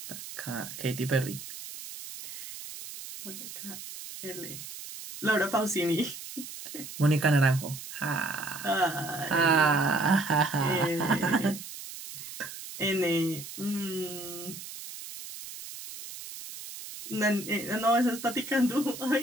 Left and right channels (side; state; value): right; noise; hiss, 11 dB below the sound